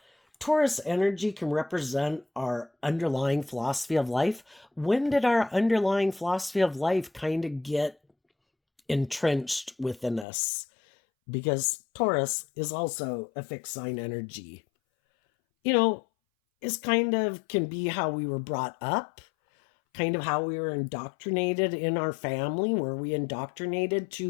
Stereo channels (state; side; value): drops out; right; at 10.2 s